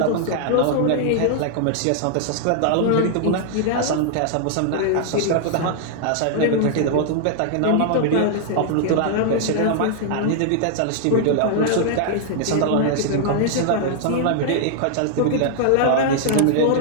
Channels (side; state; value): both; different; correlation -0.01